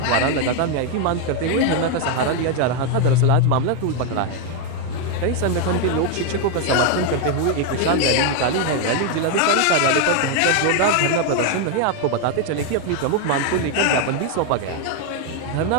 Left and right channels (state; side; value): different; both; correlation 0.01